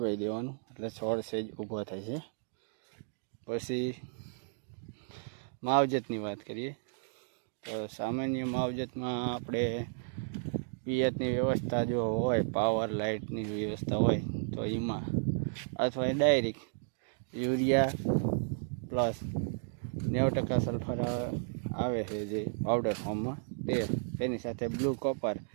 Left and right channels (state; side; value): silent; left; digital silence